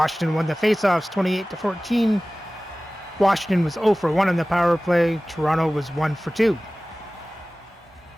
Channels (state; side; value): normal; both; correlation 0.98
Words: won the faceoffs 28-14. Washington was 0 for 1 on the power play. Toronto was 1 for 2.